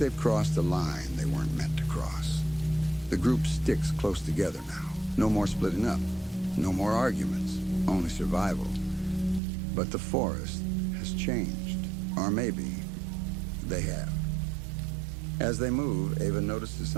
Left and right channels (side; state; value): left; drops out; at 9.4 s